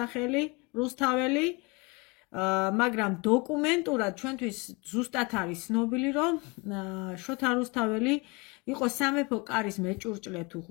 რუსთაველი, მაგრამ დოკუმენტურად ჩვენთვის ზუსტად არის ცნობილი, რომ შოთა რუსთაველი იყო სამეფო კარის მეჭურჭლე თუ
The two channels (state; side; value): quieter; right; 27.8 dB